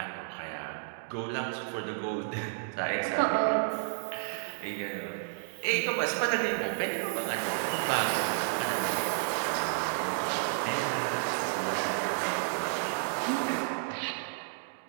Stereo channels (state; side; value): silent; left; digital silence